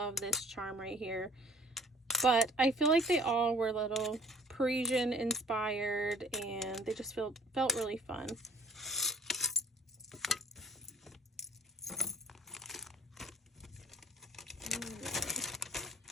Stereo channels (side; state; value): both; normal; correlation 0.52